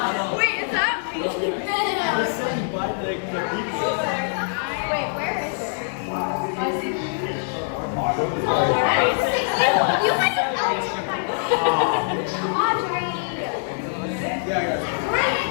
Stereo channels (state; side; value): silent; right; 56 dB below the other